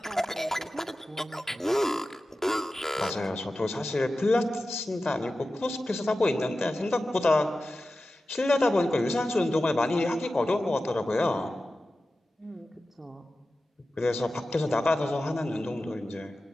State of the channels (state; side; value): normal; both; correlation 0.94